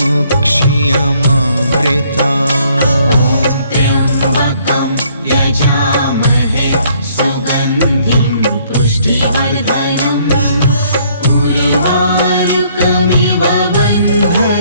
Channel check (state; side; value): inverted; both; correlation -0.65